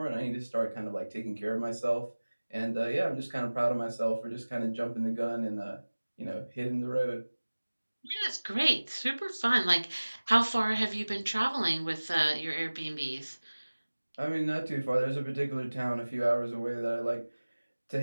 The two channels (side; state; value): both; inverted; correlation -1.00